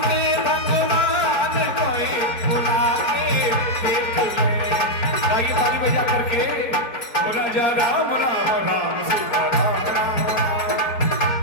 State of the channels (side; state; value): right; late; 4.5 ms